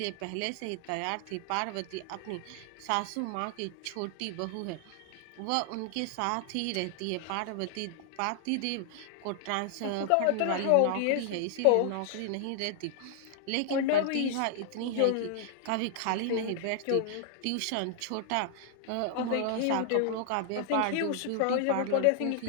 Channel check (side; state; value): both; different; correlation 0.00